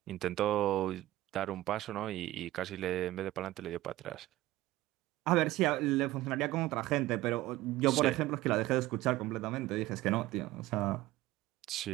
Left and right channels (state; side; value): quieter; left; 16.5 dB